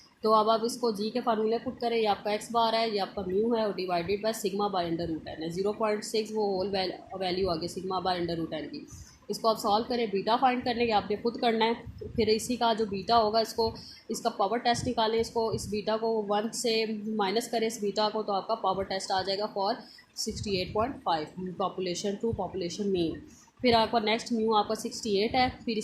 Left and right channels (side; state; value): both; identical; correlation 1.00